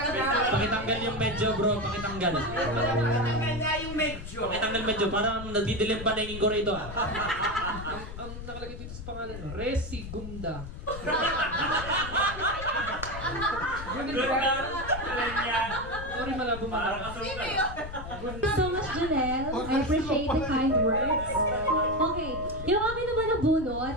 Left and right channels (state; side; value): noise; left; rumble, 10 dB below the sound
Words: Pakitanggal yung medyo, bro. Pakitanggal. Pakitanggal nga yung medyo. Pakitanggal medyo. Parang nagdidilim pa na yung ingko rito, ah. Ang nakalagay dito sa pangalan, Resigunda. Sorry, malabo malabo. Thank you so much, Janelle. I appreciate the kind words. Okay, yung akin naman na bunot,